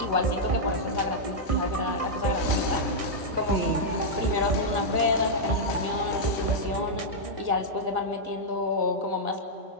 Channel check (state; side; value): late; left; 1.6 ms